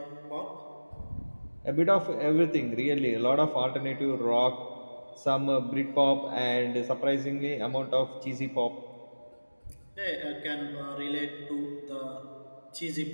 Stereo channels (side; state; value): both; inverted; correlation -1.00